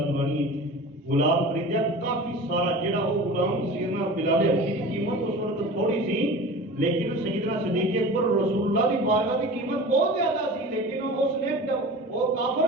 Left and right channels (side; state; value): both; normal; correlation 0.36